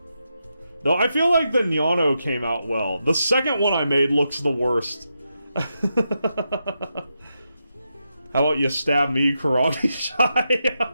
Though I feel like the Nyano came out well. The second one I made looks the worst. How about you stab me, Karate Shy?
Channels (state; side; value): inverted; both; correlation -0.85